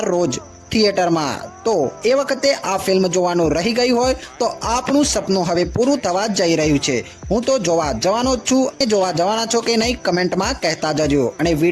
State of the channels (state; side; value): identical; both; correlation 1.00